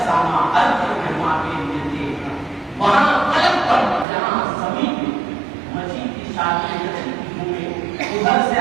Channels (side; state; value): left; drops out; at 4.0 s